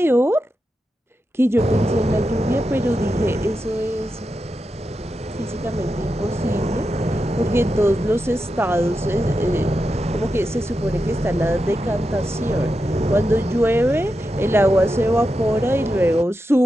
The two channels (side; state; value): both; normal; correlation 0.88